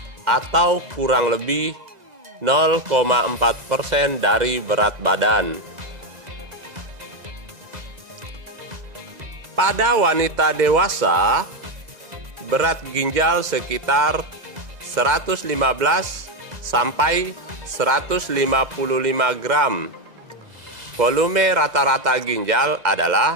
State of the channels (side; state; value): left; late; 2.0 ms